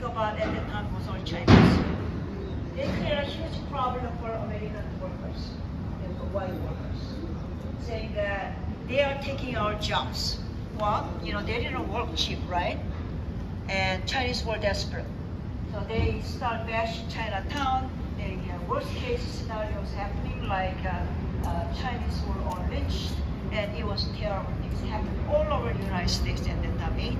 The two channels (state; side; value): identical; both; correlation 1.00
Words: about at the time was all Chinese. They create a huge problem for American workers, the white workers, saying that they are taking our jobs. Well, they didn't work cheap, right? And Chinese were desperate. So they start bashing Chinatown. They have worst case scenarios happening, like Chinese were all lynched, and it was terrible. Things happened all over the United States at the time.